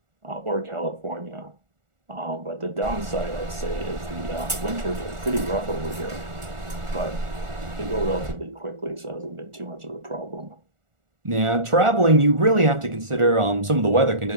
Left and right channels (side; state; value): left; late; 1.4 ms